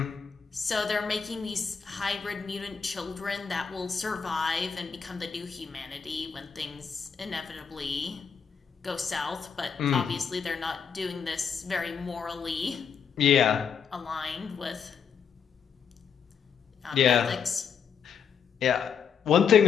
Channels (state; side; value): quieter; right; 6.7 dB